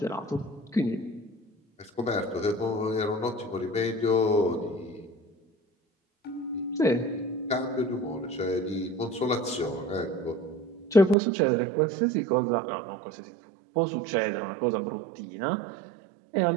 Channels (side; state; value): left; drops out; at 11.2 s